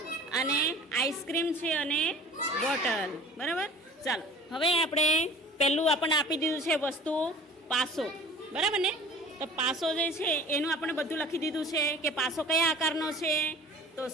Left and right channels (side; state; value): both; normal; correlation 0.44